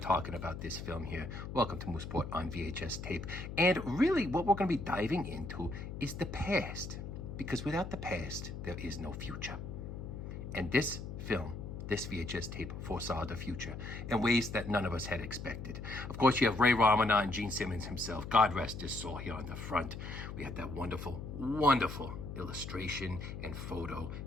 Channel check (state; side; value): noise; left; hum, 8 dB below the sound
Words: about this film here. Welcome to Moosport on VHS tape. And really what we're going to be diving into is the past. Because without the past, there is no future. And this film, this VHS tape, foresaw the future in ways that none of us had expected. Of course, you have Ray Romano and Gene Simmons himself. God rest his soul here on the front. We had that wonderful, wonderful illustration and photo